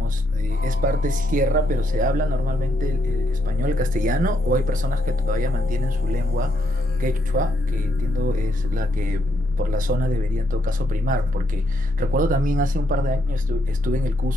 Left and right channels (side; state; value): both; normal; correlation 0.77